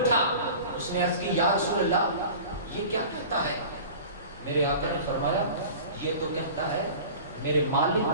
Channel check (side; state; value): both; inverted; correlation -0.39